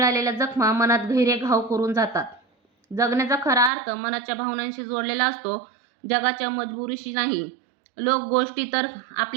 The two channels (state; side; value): drops out; left; at 3.7 s